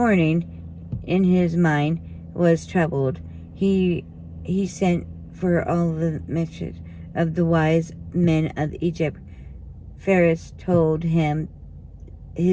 in his mind was troubled. He sent for all the messengers of the wise men of Egypt. Pharaoh told him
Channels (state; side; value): identical; both; correlation 1.00